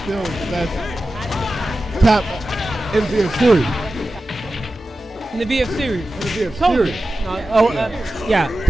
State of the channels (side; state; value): both; normal; correlation 0.94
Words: the best top in the VF series. In the VF series.